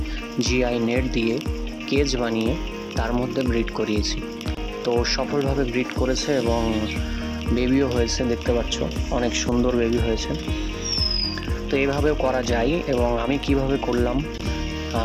জিআই নেট দিয়ে কেজ বানিয়ে তার মধ্যে ব্রিড করিয়েছি। তো সফলভাবে ব্রিড করেছে এবং বেবিও হয়েছে, দেখতে পাচ্ছ অনেক সুন্দর বেবি হয়েছে। তো এইভাবেও করা যায়। এবং আমি কিভাবে করলাম,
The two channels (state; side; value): identical; both; correlation 1.00